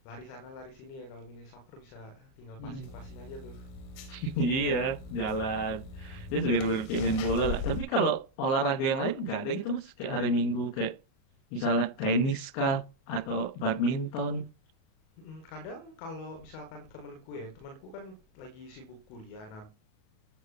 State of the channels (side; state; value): right; late; 38 ms